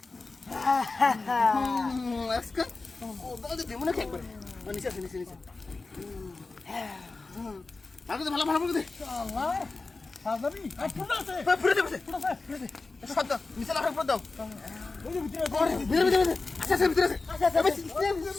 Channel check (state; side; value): quieter; right; 3.7 dB